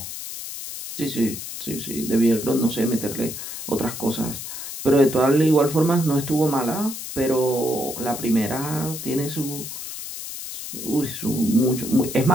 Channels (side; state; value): left; noise; hiss, 8 dB below the sound